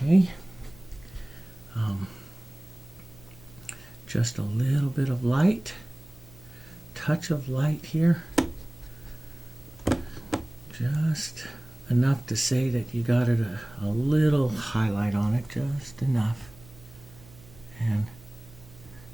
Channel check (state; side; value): noise; right; hum, 22 dB below the sound